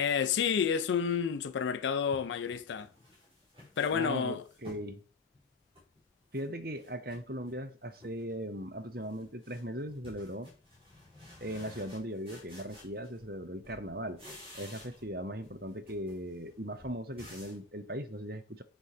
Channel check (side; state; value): right; quieter; 4.1 dB